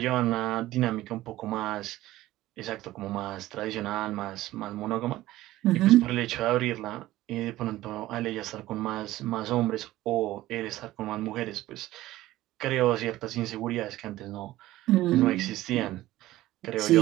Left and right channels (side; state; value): left; quieter; 16.0 dB